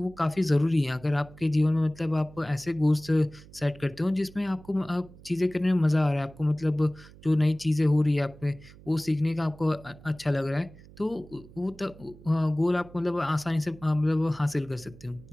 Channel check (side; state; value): right; noise; hum, 21 dB below the sound